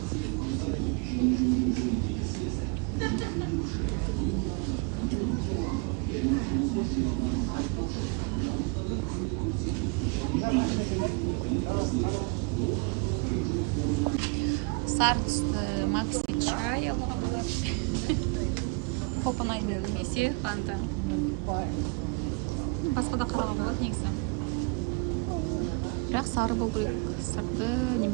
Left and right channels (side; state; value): left; quieter; 30.8 dB